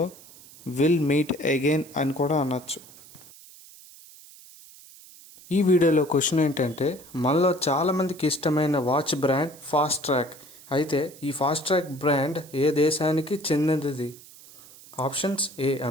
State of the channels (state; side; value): noise; right; hiss, 21 dB below the sound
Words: విల్ మీట్ అగైన్ అని కూడా అనొచ్చు. ఈ వీడియోలో క్వశ్చన్ ఏంటంటే, మనలో చాలామందికి ఇష్టమైన వాచ్ బ్రాండ్ ఫాస్ట్ ట్రాక్. అయితే ఈ ఫాస్ట్ ట్రాక్ బ్రాండ్ ఏ దేశానికి చెందినది? Options: A